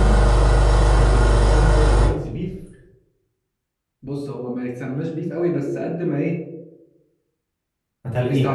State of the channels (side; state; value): both; identical; correlation 1.00